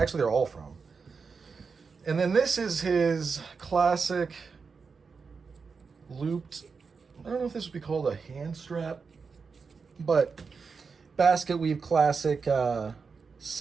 they're all from. And then this is his classic looped, I don't know if this would be called a hand strap, but basket weave classic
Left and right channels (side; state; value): left; quieter; 5.2 dB